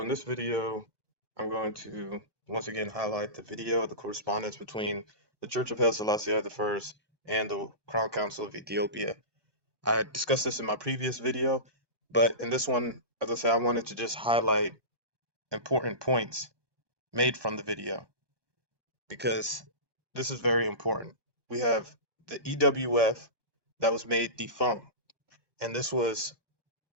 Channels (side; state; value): left; late; 1.2 ms